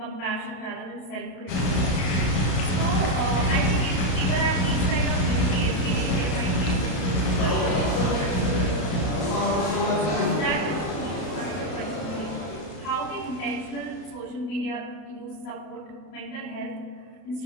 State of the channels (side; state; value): right; late; 32 ms